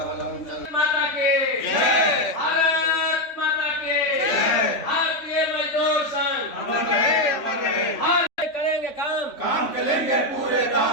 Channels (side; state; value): right; late; 3.5 ms